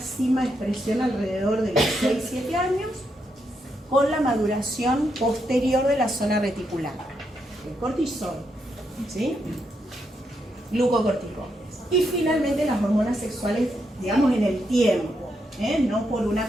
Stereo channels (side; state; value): both; normal; correlation 0.81